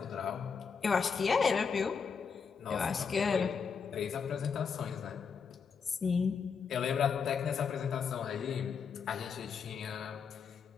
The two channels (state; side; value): quieter; right; 6.1 dB